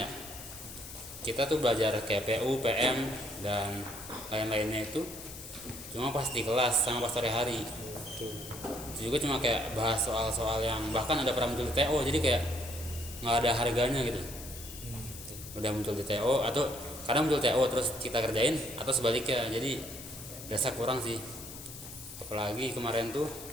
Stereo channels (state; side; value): noise; left; hiss, 13 dB below the sound